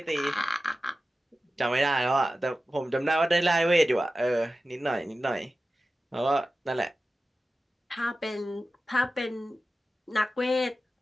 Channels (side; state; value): both; normal; correlation 0.94